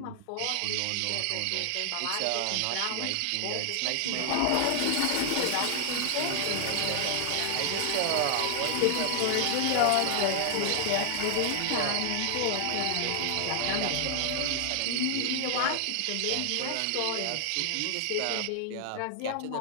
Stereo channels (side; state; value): both; different; correlation 0.00